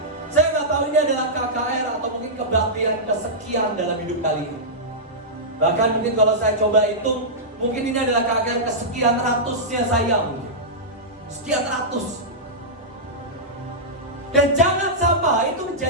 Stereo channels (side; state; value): both; normal; correlation -0.12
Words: Saya nggak tahu ini adalah KKR atau mungkin kebaktian kesekian dalam hidup kalian. Bahkan mungkin kalau saya coba hitung, mungkin ini adalah KKR kesekian ratusnya saya mungkin. Sekian ratus. Dan jangan sampai itu